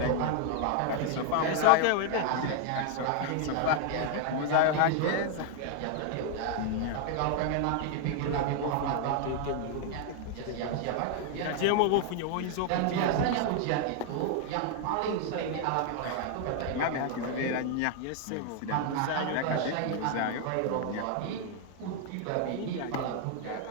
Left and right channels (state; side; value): different; both; correlation 0.00